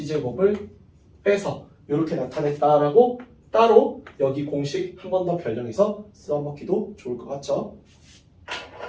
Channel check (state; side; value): identical; both; correlation 1.00